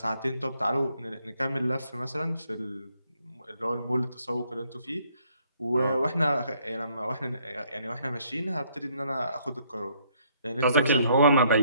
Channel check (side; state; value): both; inverted; correlation -0.67